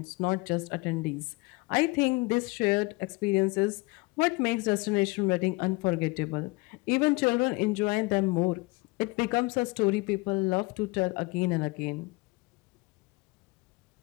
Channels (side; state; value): right; quieter; 24.8 dB